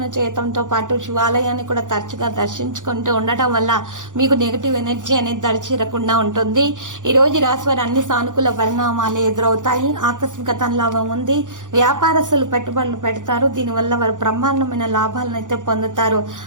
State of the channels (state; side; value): late; left; 0.87 ms